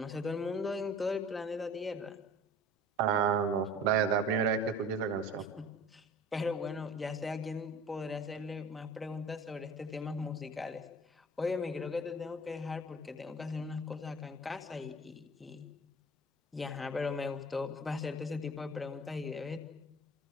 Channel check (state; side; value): normal; both; correlation 0.43